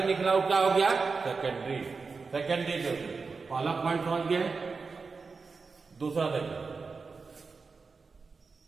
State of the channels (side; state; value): left; quieter; 4.6 dB